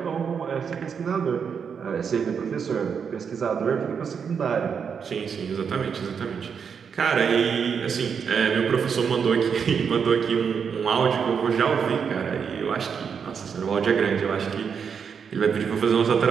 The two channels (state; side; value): quieter; left; 6.7 dB